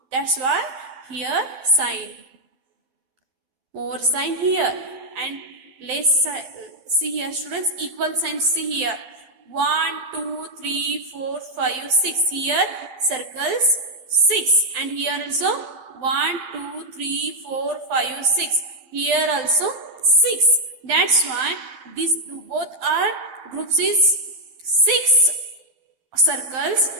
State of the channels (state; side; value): late; left; 12 ms